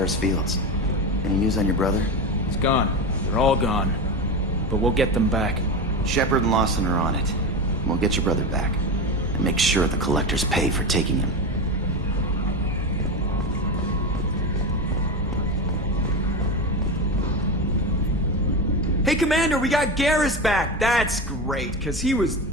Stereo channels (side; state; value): both; normal; correlation 0.20